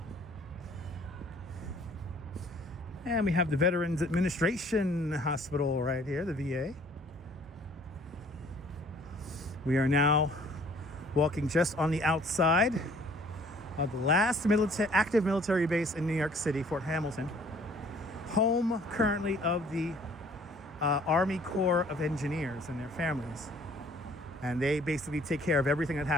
And we have the Veterans Administration Hospital right here, the VA. We are now walking just on the outside of the last active military base in New York City, Fort Hamilton. Home currently of the Army Corps of Engineers and their families. And they basically take care of everything that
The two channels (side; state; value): both; normal; correlation 0.56